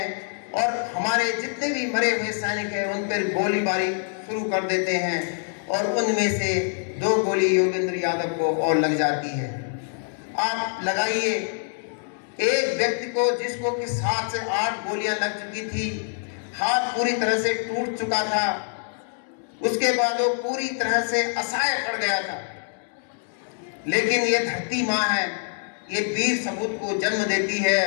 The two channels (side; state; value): right; silent; 62 dB below the other